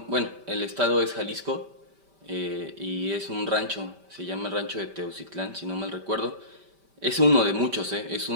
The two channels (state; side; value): late; left; 5.1 ms